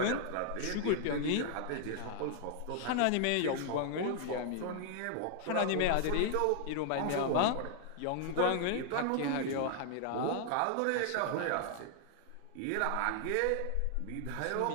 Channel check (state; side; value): different; both; correlation 0.00